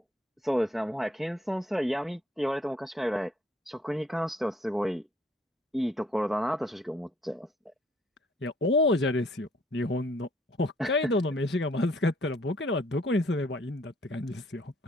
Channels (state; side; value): normal; both; correlation 0.63